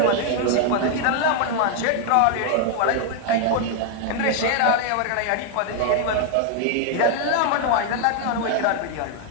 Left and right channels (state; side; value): different; both; correlation 0.00